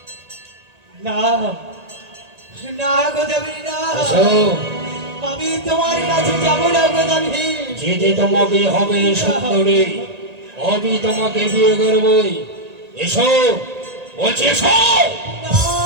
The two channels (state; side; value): late; left; 1.8 ms